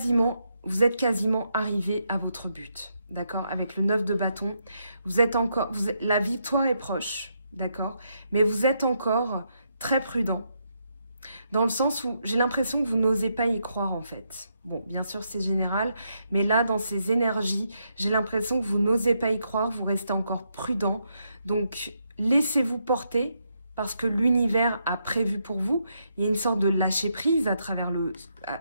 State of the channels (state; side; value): inverted; both; correlation -0.79